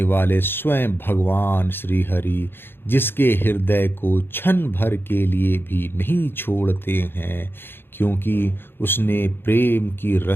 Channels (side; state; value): right; late; 0.10 ms